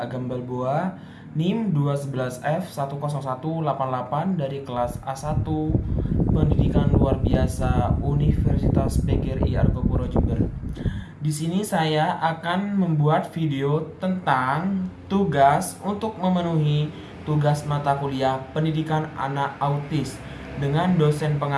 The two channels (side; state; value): both; identical; correlation 1.00